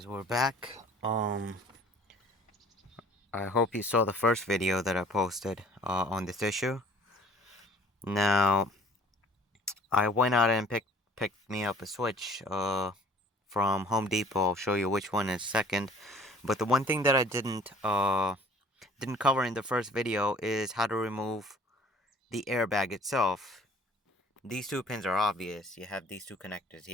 we're back. I hope you saw the first video that I posted on this issue. Now, I went out and picked me up a Switch from Home Depot. I'll show you which one is second. But the one thing that I didn't cover in the first video is how to remove the airbag itself. These two pins are obvious. You have these two connectors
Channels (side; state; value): both; normal; correlation 0.52